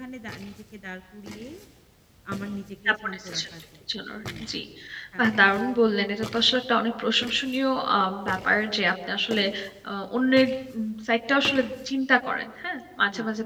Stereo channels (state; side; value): identical; both; correlation 1.00